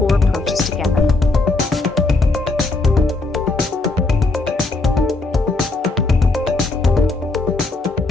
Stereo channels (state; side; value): quieter; right; 3.3 dB